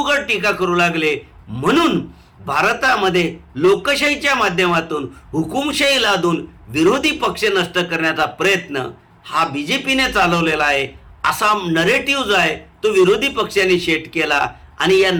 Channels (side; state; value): both; identical; correlation 1.00